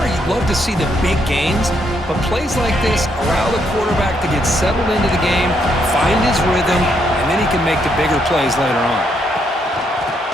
you'd love to see the big gains, but plays like this allow the quarterback to get settled into the game, find his rhythm, and then he can make the bigger plays later on.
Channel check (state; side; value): normal; both; correlation 0.75